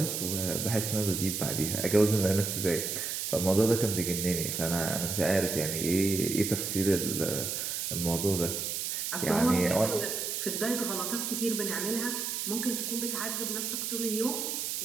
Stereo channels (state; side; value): noise; right; hiss, 2 dB below the sound